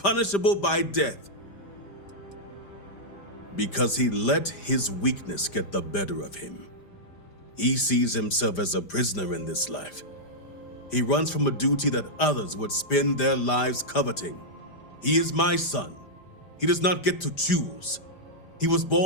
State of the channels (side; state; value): right; late; 5.0 ms